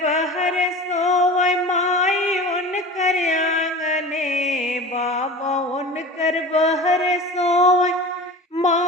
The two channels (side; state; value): both; normal; correlation 0.35